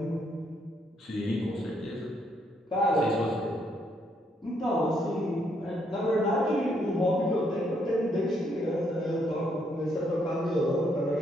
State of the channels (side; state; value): both; normal; correlation 0.73